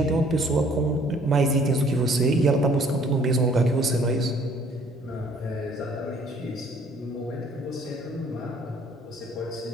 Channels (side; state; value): both; normal; correlation 0.59